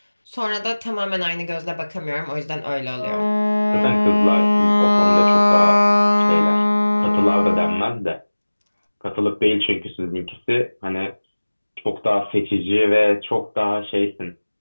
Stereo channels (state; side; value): inverted; both; correlation -1.00